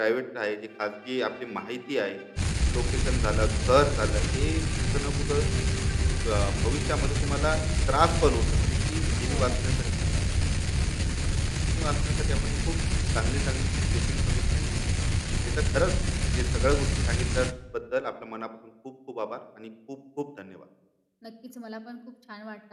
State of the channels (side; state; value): both; identical; correlation 1.00